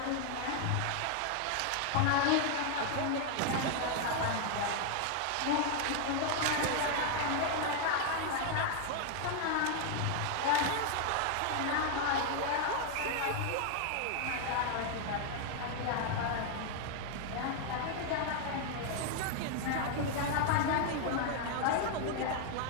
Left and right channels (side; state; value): both; different; correlation 0.00